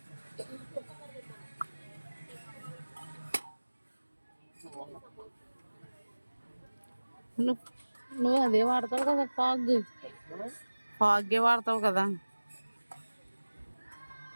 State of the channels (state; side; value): inverted; both; correlation -1.00